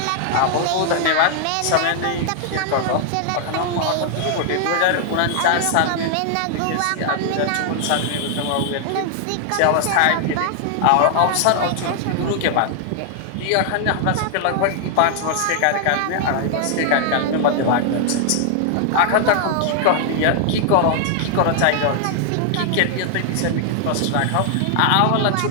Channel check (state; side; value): different; both; correlation 0.00